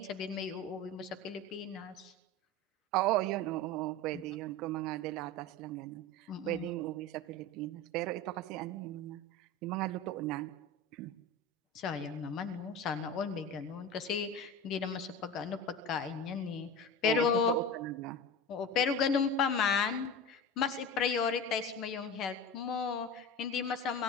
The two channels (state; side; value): normal; both; correlation 0.29